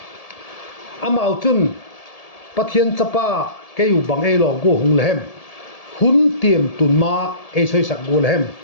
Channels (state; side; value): late; right; 1.7 ms